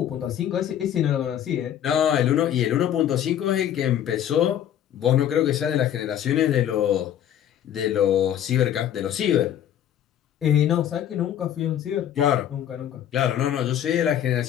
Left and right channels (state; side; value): quieter; right; 10.5 dB